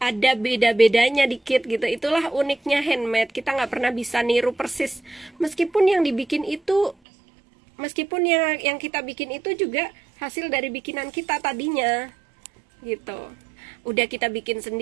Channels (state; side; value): drops out; left; at 7.0 s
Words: ada beda-bedanya dikit gitu. Itulah uniknya handmade. Kita nggak pernah bisa niru persis. Meskipun yang dibikin itu, meskipun yang kita bikin itu juga hasil dari bikinan kita tadinya gitu. Udah kita bikin